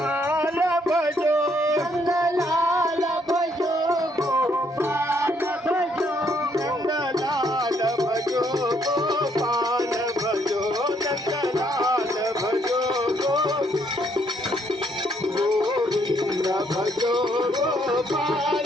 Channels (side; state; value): both; normal; correlation 0.70